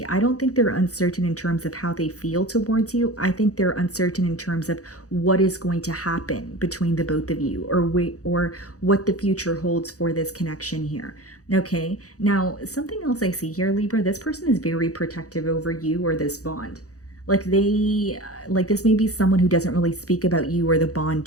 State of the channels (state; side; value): late; right; 0.66 ms